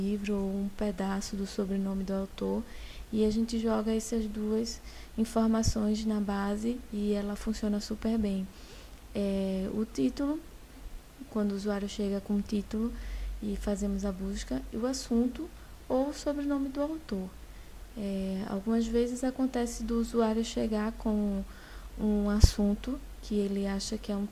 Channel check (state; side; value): identical; both; correlation 1.00